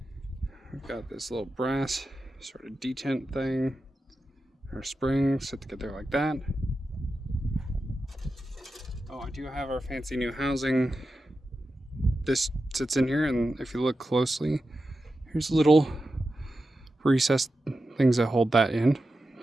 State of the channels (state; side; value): normal; both; correlation 0.91